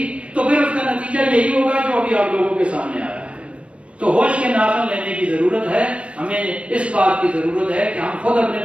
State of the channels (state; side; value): late; left; 0.060 ms